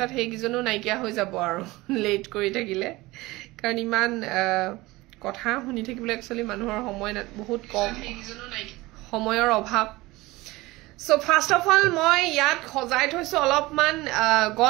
হেগিজনো নাইকিয়া হৈ যাব আৰু লেট কৰি থাকিলে কাৰণ ইমান কথা শুনি থাকিবলৈ একচুয়ালি মানুহৰ সময় বহুত কম সময়ৰ অভাৱ So first of all মই ইয়াত খজাই থৈছো অলপমান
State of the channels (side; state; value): left; quieter; 20.5 dB